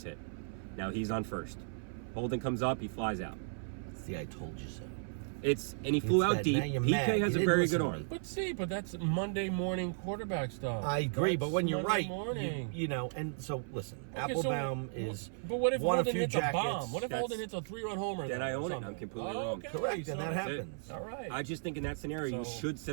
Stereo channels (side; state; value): left; silent; 54 dB below the other